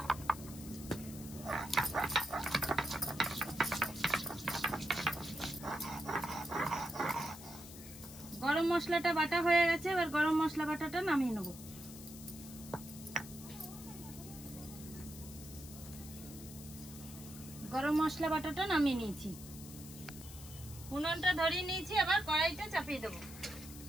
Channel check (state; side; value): noise; left; hiss, 15 dB below the sound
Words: গরম মশলাটা বাটা হয়ে গেছে, এবার গরম মশলা বাটাটা নামিয়ে নেব। গরম মশলা বাটাটা নামিয়ে নিয়েছি। উনুনটা ধরিয়ে নিয়েছি, এবার কড়াইটা চাপিয়ে দেব।